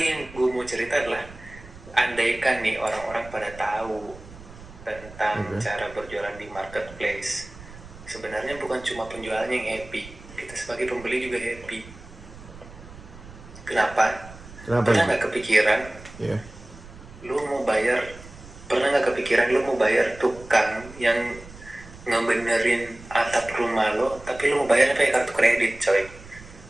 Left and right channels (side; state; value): right; noise; rumble, 18 dB below the sound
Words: yang gua mau cerita adalah andaikan nih orang-orang pada tahu tentang cara berjualan di marketplace, sebenarnya bukan cuma penjualnya yang happy, kita sebagai pembeli juga happy. Kenapa? Pernah nggak kepikiran lu mau bayar tukang yang ngebenerin atap rumah lo, tapi lu mau bayar pakai kartu kredit, coy,